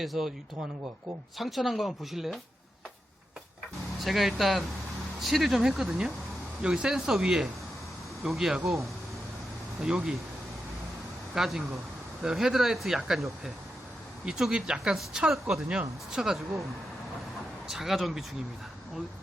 유통하는 것 같고, 상처난 거 한번 보실래요? 제가 일단 칠을 좀 했거든요. 여기 센서 위에 여기하고 여기 까진 거, 헤드라이트 약간 옆에 이쪽이 약간 스쳤거든요. 스쳐가지고 자가 정비 중입니다.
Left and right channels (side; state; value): both; normal; correlation 0.87